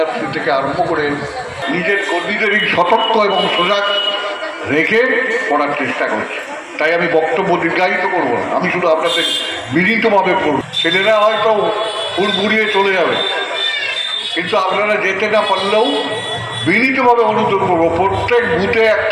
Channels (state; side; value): identical; both; correlation 1.00